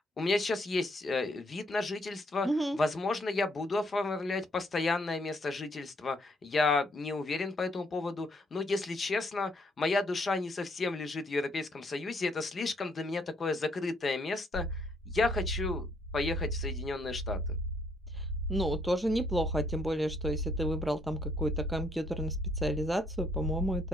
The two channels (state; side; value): normal; both; correlation 0.69